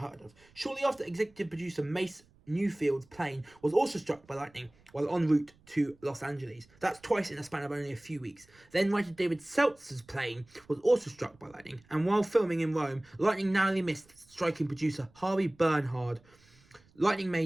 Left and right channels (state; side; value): noise; right; rumble, 30 dB below the sound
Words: of. Shortly after, executive producer Mace Newfield's plane was also struck by lightning while en route to Los Angeles. That's twice in a span of only a few weeks. Then writer David Seltzer's plane was also struck by lightning, and while filming in Rome, lightning narrowly missed striking producer Harvey Bernhard. Lightning